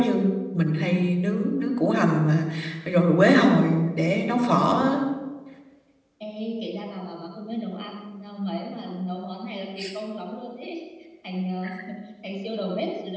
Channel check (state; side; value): identical; both; correlation 1.00